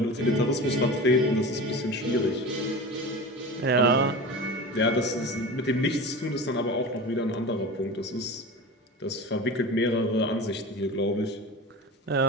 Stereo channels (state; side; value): normal; both; correlation 0.31